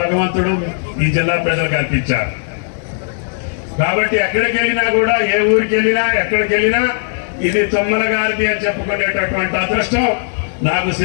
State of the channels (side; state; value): right; silent; digital silence